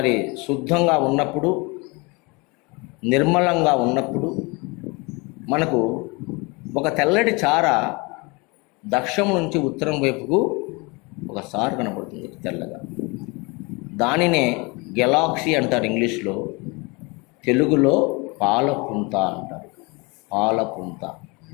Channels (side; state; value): right; quieter; 27.6 dB